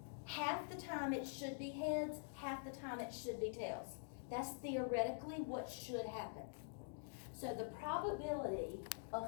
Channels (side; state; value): right; silent; digital silence